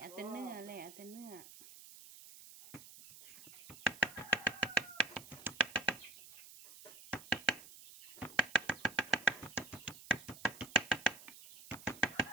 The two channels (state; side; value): noise; right; hiss, 17 dB below the sound